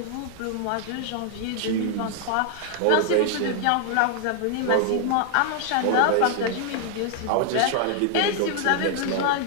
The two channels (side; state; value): both; different; correlation 0.00